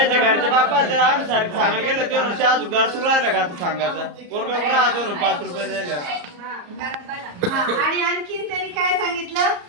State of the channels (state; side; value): late; left; 34 ms